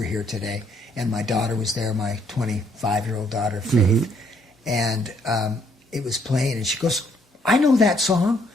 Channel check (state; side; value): normal; both; correlation 0.68